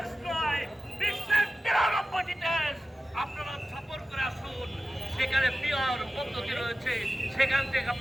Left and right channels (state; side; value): normal; both; correlation 0.95